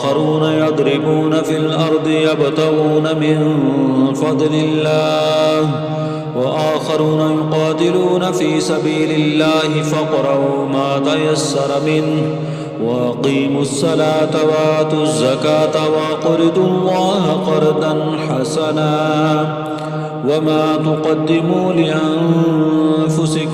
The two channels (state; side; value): identical; both; correlation 1.00